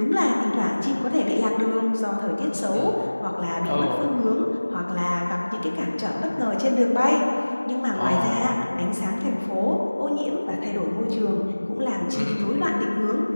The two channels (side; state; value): both; inverted; correlation -1.00